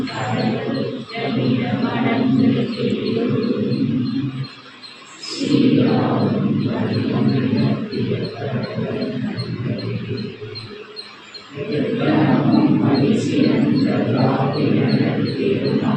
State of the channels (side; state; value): both; identical; correlation 1.00